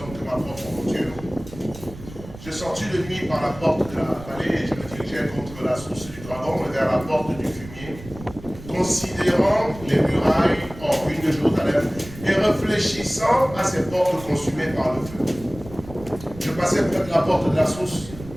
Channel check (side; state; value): right; noise; rumble, 15 dB below the sound